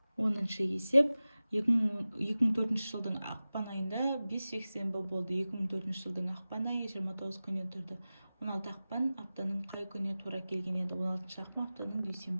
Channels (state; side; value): inverted; both; correlation -0.96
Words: 10-шы есеп. 2004 жылдың ақпан айында 5 жексенбі болды. 2004 жылдың ақпан айы 29 күннен тұрды. 16 ақпан аптаның қай күніне тура келген еді? 16 ақпан аптаның